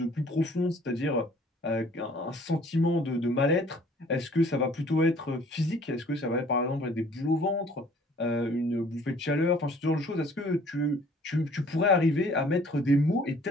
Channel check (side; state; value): both; normal; correlation 0.55